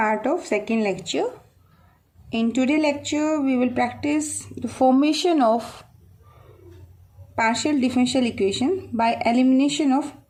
of second lecture. In today's lecture, we will practice the formation of partial differential equation by elimination of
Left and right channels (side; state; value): both; identical; correlation 1.00